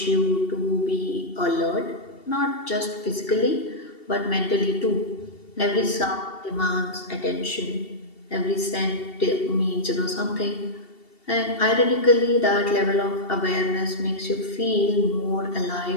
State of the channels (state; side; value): late; right; 2.7 ms